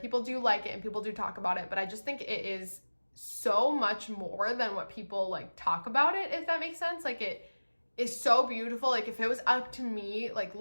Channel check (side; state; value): both; inverted; correlation -1.00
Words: do like it and people do talk about it, but I just think it is so much more than what people like talk about it, if that makes sense. Like it is so beautiful. Like if it was up to me, like